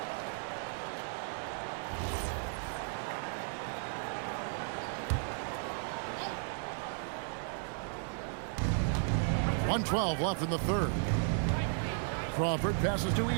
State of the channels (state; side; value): silent; left; 55 dB below the other